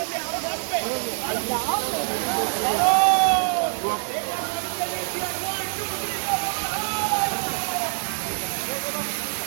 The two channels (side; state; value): left; silent; 60 dB below the other